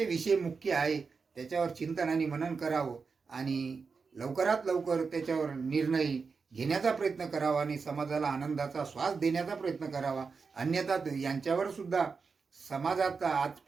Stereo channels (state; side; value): quieter; left; 5.0 dB